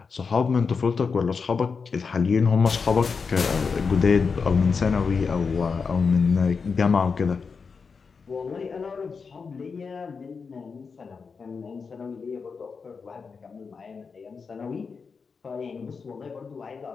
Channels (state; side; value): quieter; right; 5.2 dB